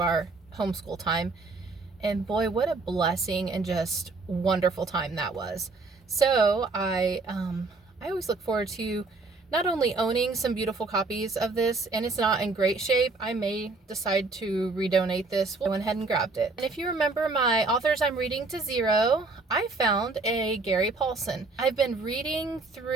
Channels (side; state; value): left; quieter; 3.7 dB